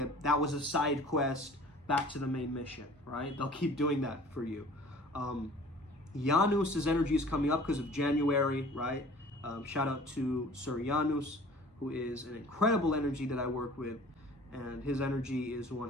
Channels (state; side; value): normal; both; correlation 0.47